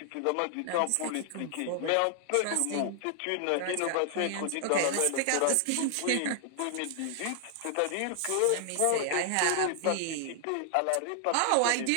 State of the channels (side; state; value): both; different; correlation 0.00